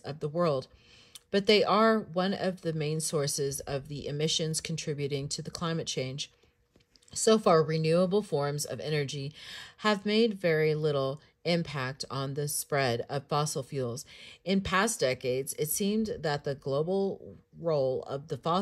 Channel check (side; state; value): both; identical; correlation 1.00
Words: the world, but they are one of the main sources of the emissions contributing to the climate change. So far, renewable forms of energy have made very little impact on the spread of fossil fuels. In past decades, it seemed that the global role of the